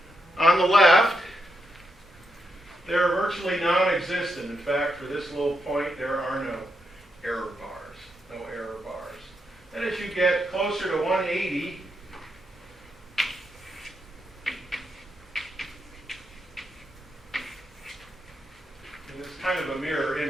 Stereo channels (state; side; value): normal; both; correlation 0.82